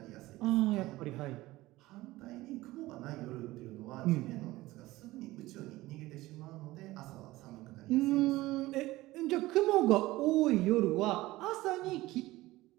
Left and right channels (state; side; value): quieter; left; 18.3 dB